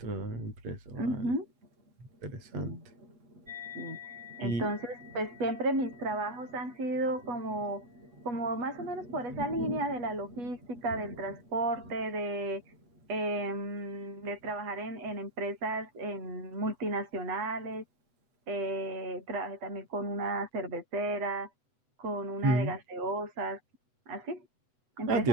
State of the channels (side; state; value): left; late; 8.0 ms